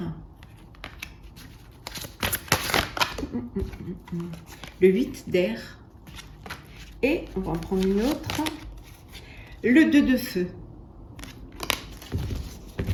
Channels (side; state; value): both; identical; correlation 1.00